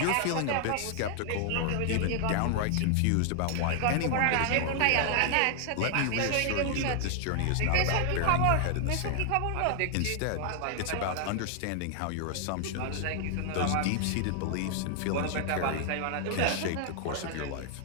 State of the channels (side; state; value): both; different; correlation 0.00